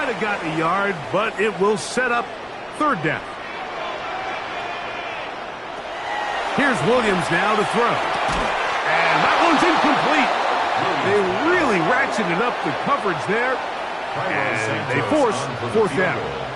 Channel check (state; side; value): identical; both; correlation 1.00